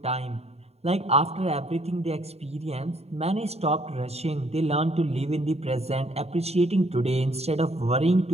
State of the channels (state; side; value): late; left; 0.30 ms